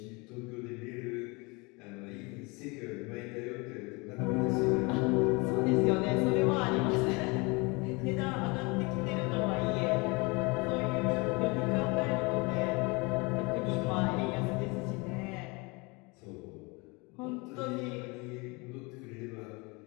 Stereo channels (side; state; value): right; quieter; 27.5 dB